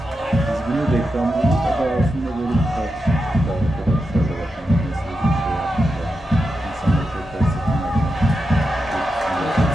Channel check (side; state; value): both; normal; correlation 0.88